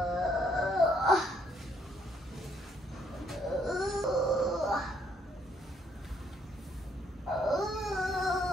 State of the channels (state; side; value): normal; both; correlation 0.69